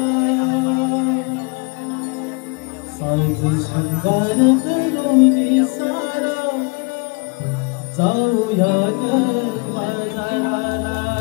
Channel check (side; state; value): right; quieter; 30.8 dB